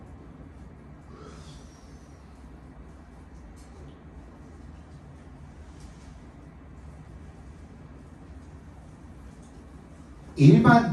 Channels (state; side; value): identical; both; correlation 1.00